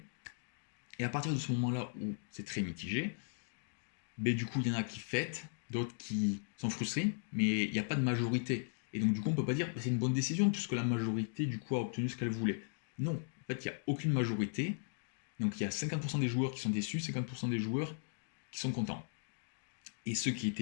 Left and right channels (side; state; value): right; silent; digital silence